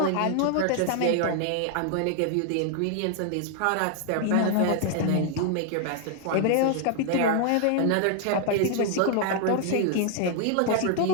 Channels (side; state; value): both; different; correlation 0.00